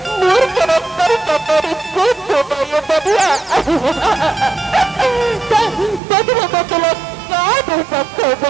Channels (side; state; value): left; drops out; at 6.0 s